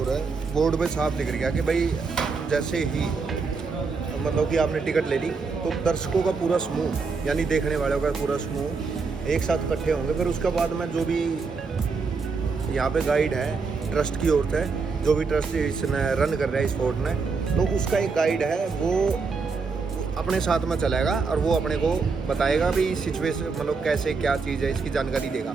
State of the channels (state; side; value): quieter; left; 4.7 dB